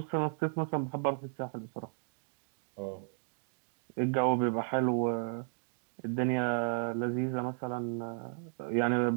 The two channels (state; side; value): silent; left; digital silence